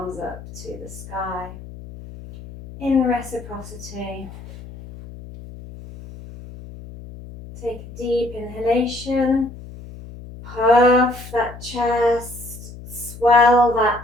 up to the sky. In reciprocity. Take a deep inhalation. Puff that chest. Swell that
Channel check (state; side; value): noise; left; hum, 15 dB below the sound